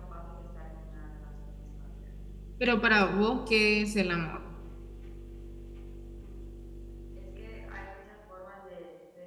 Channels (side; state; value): both; identical; correlation 1.00